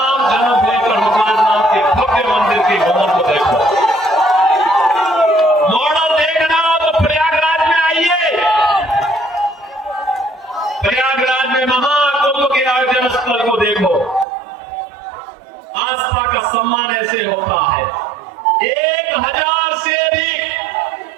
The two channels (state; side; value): drops out; left; at 14.2 s